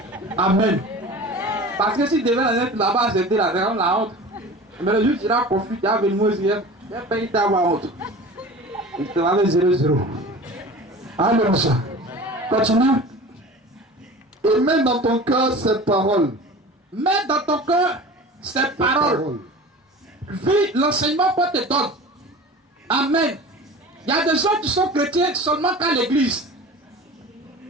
Amen. Parce que si tu devais être là-bas, c'était la honte. Mais le jour où tu iras confus, tu as venu me dire, il n'y a pas eu d'avoir honte. Il te va avec 0-0. Alléluia. Continue. Et mets dans ton cœur ces paroles. Mets dans ton cœur ces paroles. Vis l'enseignement qu'on te donne. Amen. Il y a des gens qui sont chrétiens seulement qu'à l'église.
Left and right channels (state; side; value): normal; both; correlation 0.38